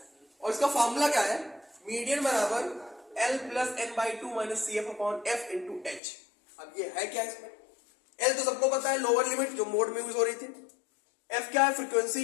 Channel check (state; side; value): drops out; right; at 6.0 s